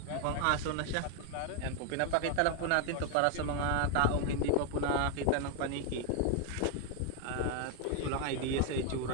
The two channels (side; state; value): both; different; correlation 0.01